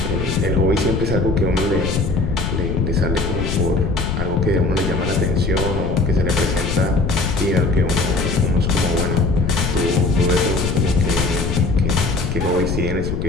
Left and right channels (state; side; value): noise; left; rumble, 2 dB below the sound